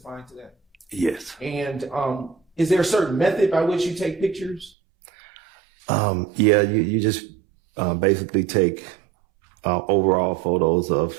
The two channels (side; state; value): left; drops out; at 4.7 s